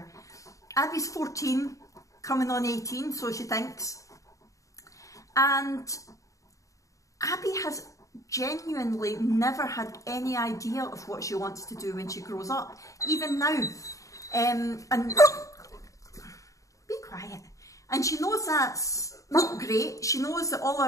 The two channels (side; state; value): right; late; 0.16 ms